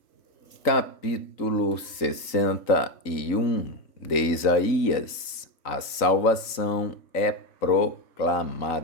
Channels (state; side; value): late; right; 3.9 ms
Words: Capítulo 61 de Isaías. A salvação é